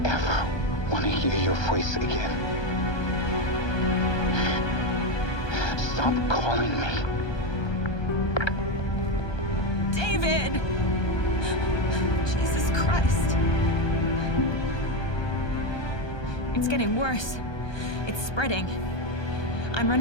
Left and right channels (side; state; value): right; late; 1.2 ms